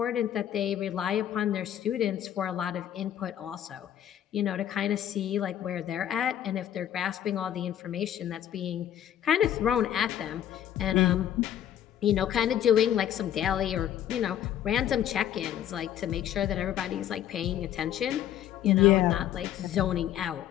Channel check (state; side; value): quieter; right; 11.0 dB